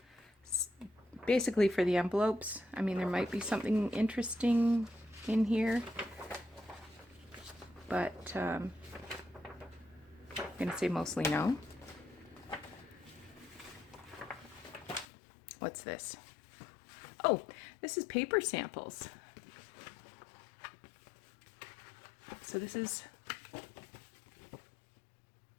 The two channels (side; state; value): right; drops out; at 15.1 s